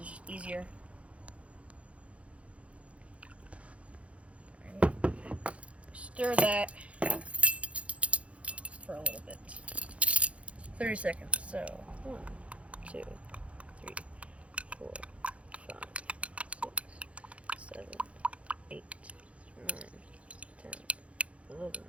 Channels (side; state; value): left; late; 0.063 ms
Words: just easier. Right. Stir that for a little bit. 30 seconds. So 1, 2, 3, 4, 5, 6, 7, 8, 9, 10. 11,